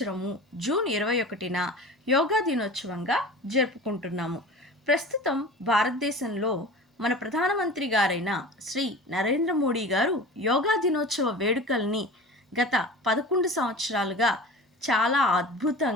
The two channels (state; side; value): normal; both; correlation 0.36